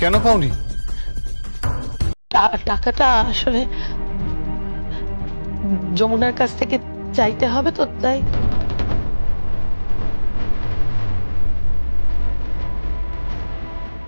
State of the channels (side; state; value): both; inverted; correlation -1.00